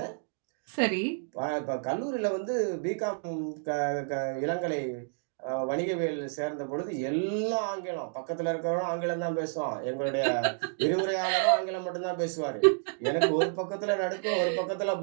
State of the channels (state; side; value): silent; left; digital silence